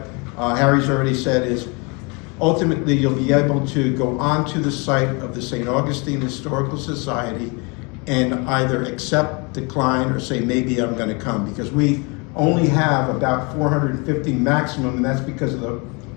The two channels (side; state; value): right; quieter; 30.4 dB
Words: Harry's already said is, ultimately you'll be able to go onto the site of the St. Augustine Historical Society and either accept, decline, or say, maybe I'm going to come, because we only have about 450 maximum, and that's because of the